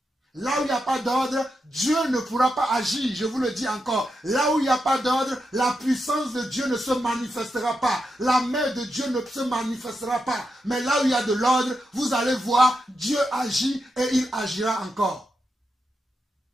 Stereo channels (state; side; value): normal; both; correlation 0.86